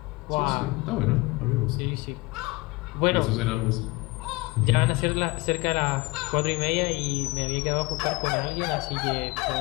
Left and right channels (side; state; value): right; quieter; 23.5 dB